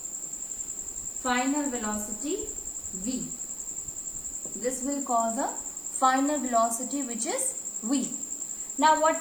Final velocity v. This will cause a final velocity which is v. Now what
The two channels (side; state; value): right; noise; hiss, 18 dB below the sound